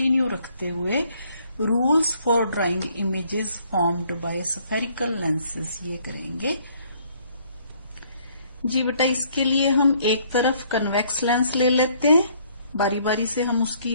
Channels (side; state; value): both; inverted; correlation -0.63